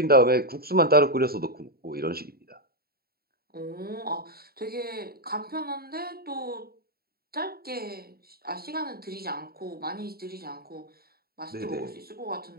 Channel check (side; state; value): left; late; 0.45 ms